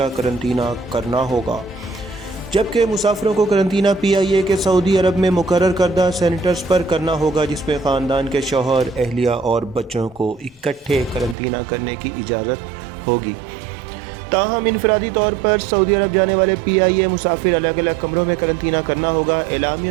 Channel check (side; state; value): left; drops out; at 11.4 s